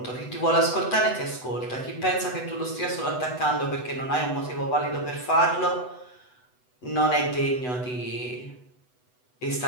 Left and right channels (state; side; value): late; right; 8.0 ms